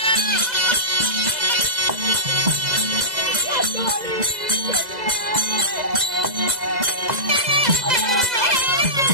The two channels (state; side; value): late; left; 2.0 ms